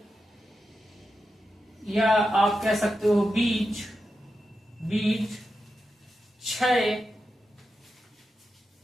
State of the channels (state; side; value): normal; both; correlation 0.89